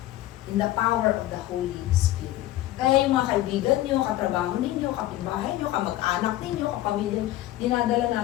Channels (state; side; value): quieter; right; 15.1 dB